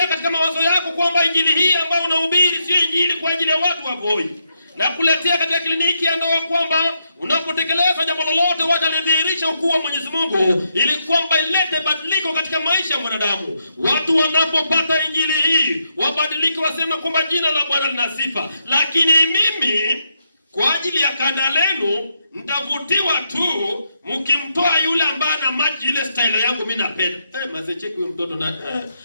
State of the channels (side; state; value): both; inverted; correlation -0.80